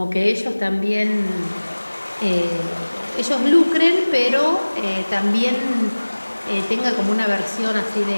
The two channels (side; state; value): both; inverted; correlation -1.00